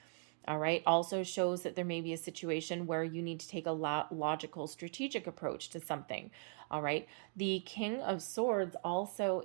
All right. Also shows that there may be a situation where you need to take a logical, strategic approach to something. All right. The King of Swords also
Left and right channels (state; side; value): silent; left; 52 dB below the other